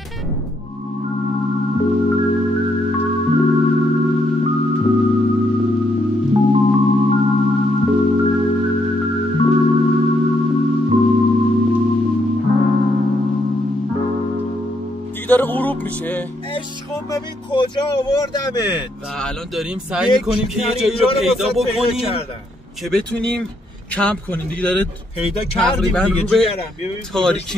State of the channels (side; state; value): both; normal; correlation 0.75